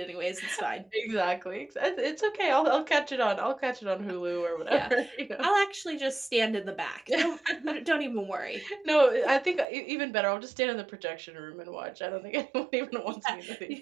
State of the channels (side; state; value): left; drops out; at 9.7 s